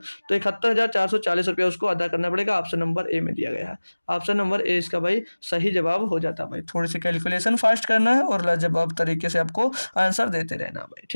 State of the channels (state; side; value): inverted; both; correlation -1.00